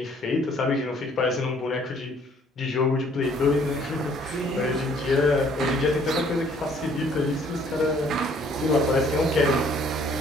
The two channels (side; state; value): both; normal; correlation 0.61